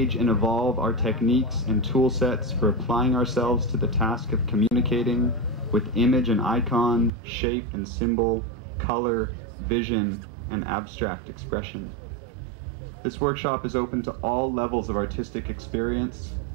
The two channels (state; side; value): drops out; left; at 7.1 s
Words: and evolve our techniques and tool sets for applying ourselves to the task of communicating with image and icon, shape and symbol, color, vision, and abstract expression. This workshop is open to all levels of artistic experience.